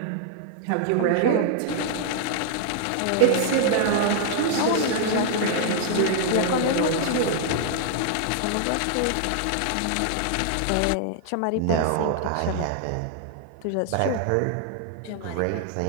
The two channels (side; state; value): both; different; correlation -0.01